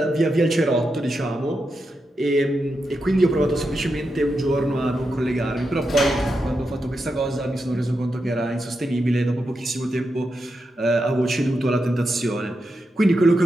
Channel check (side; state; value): both; normal; correlation 0.87